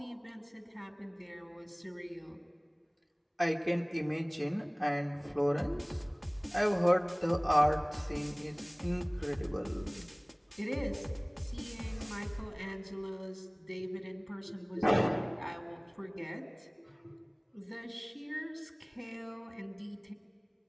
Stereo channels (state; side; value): identical; both; correlation 1.00